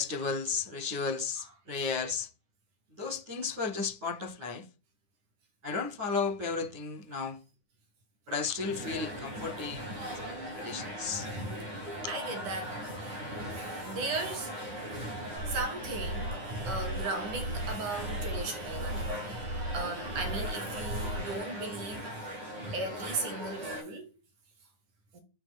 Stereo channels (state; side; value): late; left; 9.8 ms